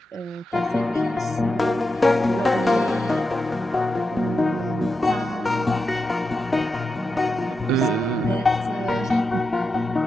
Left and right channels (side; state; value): both; normal; correlation 0.88